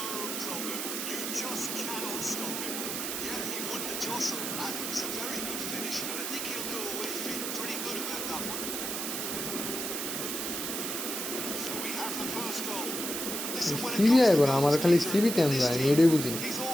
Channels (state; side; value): noise; right; hiss, 3 dB below the sound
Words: problem. You just cannot stop him. Yeah, he won the jostle, and it was a very good finish, and I think he'll go away feeling pretty good about that one. So we have the first goal. Listen, when it সিবি comes to আইবো না আমার goals, খালি Peter, সিবি তেন this যায় team, এটাই বুঝি he's